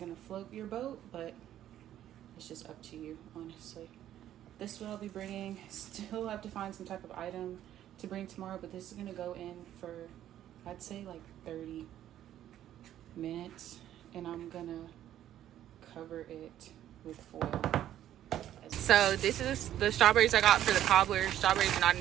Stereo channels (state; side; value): quieter; left; 11.8 dB